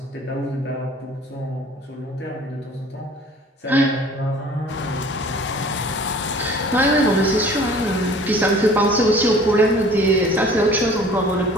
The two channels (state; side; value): normal; both; correlation 0.49